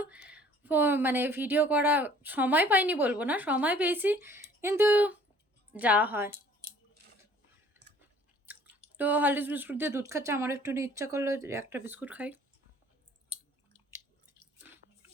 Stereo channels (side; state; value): both; normal; correlation 0.54